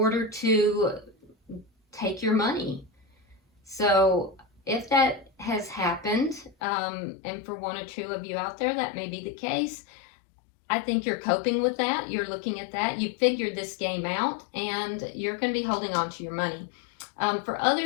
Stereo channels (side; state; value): right; drops out; at 6.6 s